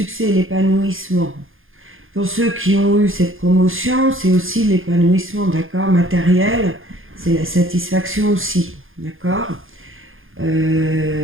et l'épanouissement. Pour ceux qui ont eu cette promotion, c'est aussi l'épanouissement, d'accord ? Matériel, c'est la satisfaction aussi, d'accord ?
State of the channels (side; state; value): left; late; 0.59 ms